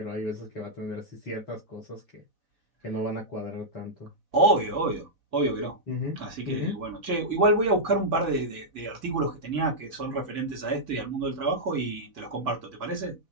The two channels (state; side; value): late; right; 4.1 ms